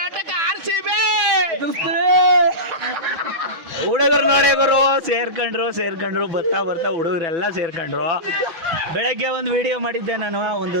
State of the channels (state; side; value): late; left; 6.1 ms